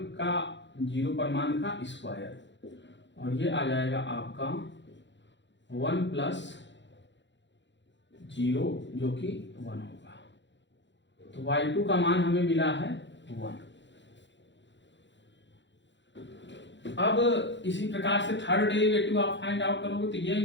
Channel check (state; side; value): late; right; 0.53 ms